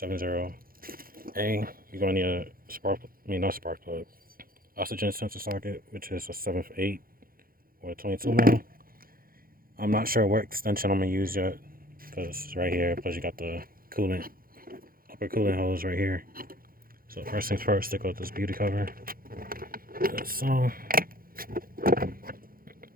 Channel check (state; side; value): late; left; 0.42 ms